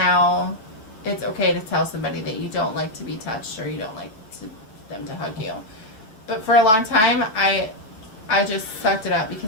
it's okay to tell somebody that you don't like to be touched or you don't like them to hug you. But for a long time, I just sucked it up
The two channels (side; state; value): right; late; 8.8 ms